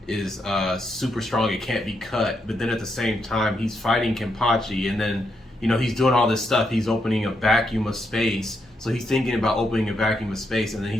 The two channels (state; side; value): normal; both; correlation 0.80